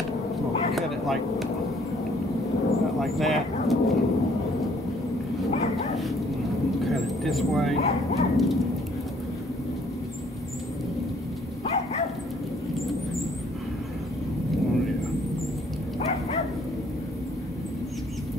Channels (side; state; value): both; normal; correlation 0.62